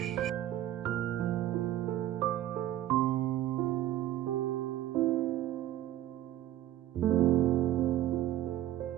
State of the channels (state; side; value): quieter; left; 13.2 dB